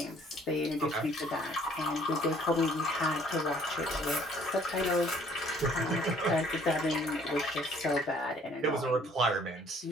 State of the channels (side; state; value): both; normal; correlation 0.59